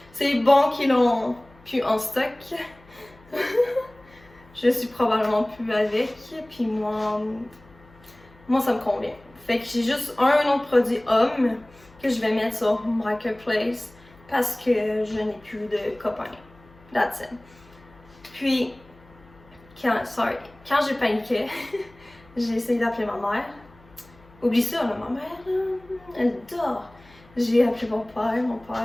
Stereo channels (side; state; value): left; noise; hum, 26 dB below the sound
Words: c'est bon qu'ils l'ont plus en stock. Je suis probablement plus avec, puis moi ça me convient. Fait que j'ai juste un autre produit homme que je vais mettre sur Marketplace parce que je n'ai plus de copains. That's it. Puis, quand j'ai paniqué, j'ai essayé d'appeler ma mère. Oublie ça, là, ma mère, là, elle dort. J'ai appelé mon